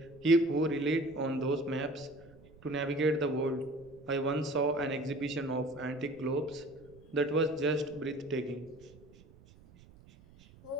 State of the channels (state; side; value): noise; right; rumble, 23 dB below the sound